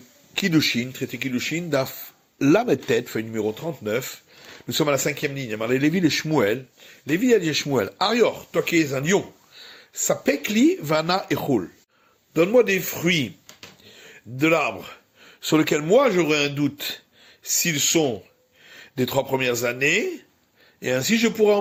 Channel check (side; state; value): both; identical; correlation 1.00